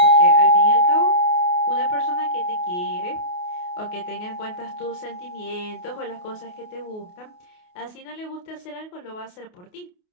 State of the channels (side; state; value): right; late; 28 ms